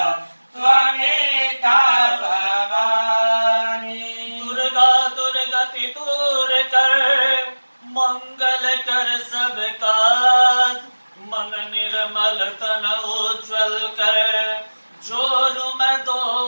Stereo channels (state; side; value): inverted; both; correlation -1.00